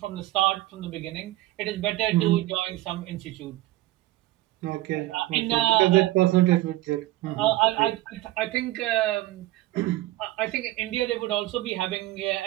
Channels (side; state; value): left; quieter; 17.0 dB